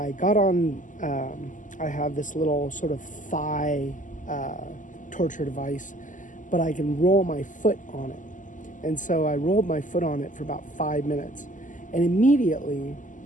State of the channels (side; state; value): right; late; 0.37 ms